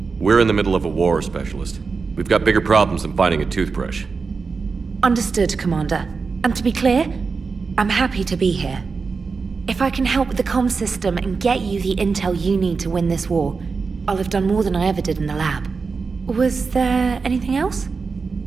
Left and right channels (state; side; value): quieter; left; 4.8 dB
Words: We're in the middle of a war, Specialist. We've got bigger problems than finding a toothbrush. Understood, Commander. And to be clear, I'm happy to be here. If I can help with the comm system and get you the intel you need to win this war, I'll have done more than I ever did in the lab. Was there anything else?